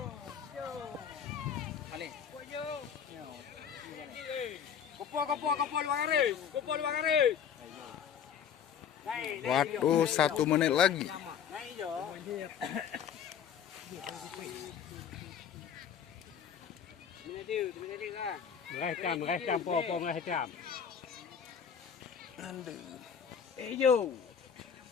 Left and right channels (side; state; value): right; quieter; 7.8 dB